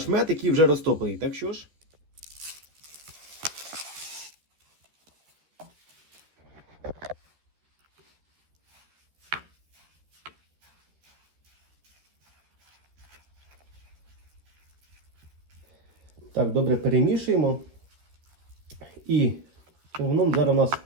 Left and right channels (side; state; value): left; late; 13 ms